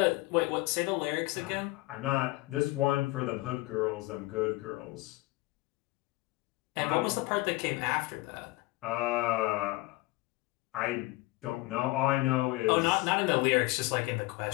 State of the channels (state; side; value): quieter; right; 21.0 dB